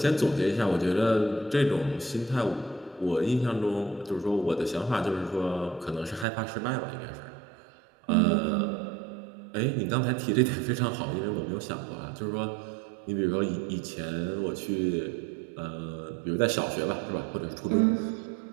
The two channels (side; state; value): left; drops out; at 6.2 s